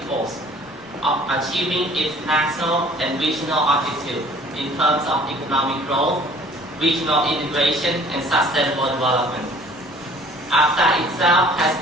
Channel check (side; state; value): both; normal; correlation 0.52